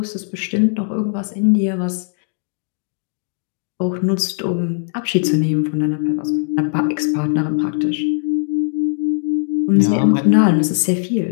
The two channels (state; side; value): silent; right; digital silence